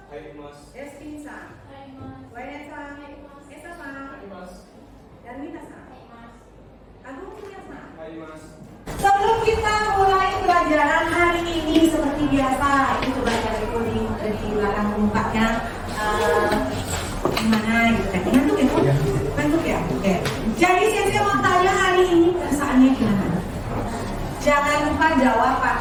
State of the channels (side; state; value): both; identical; correlation 1.00